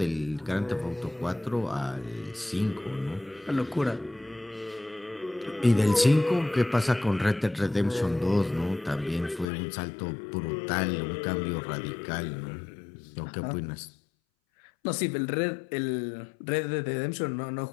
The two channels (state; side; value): drops out; right; at 9.5 s